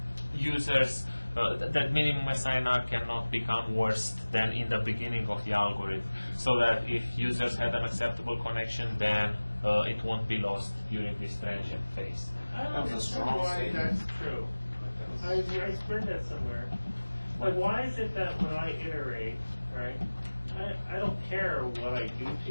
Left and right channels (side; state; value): both; inverted; correlation -1.00